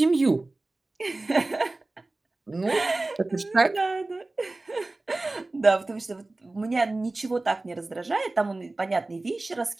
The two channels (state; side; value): quieter; left; 3.0 dB